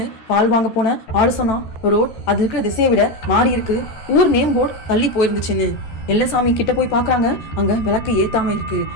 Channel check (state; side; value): late; right; 13 ms